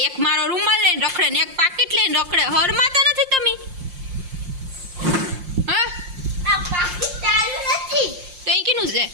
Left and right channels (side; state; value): left; late; 5.6 ms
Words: એક મારો રૂમાલ લઈને રખડે ને એક પાકીટ લઈને રખડે. હરમાં તો નથી તમે? છે